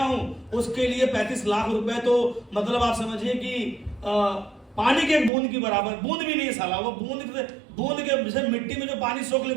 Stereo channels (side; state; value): left; drops out; at 5.3 s